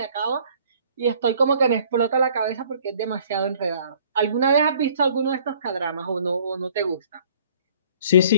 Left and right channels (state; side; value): inverted; both; correlation -0.56